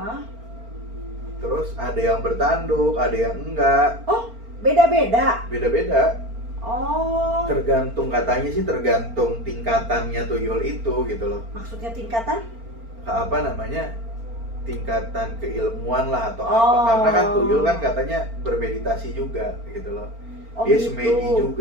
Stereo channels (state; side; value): late; left; 4.4 ms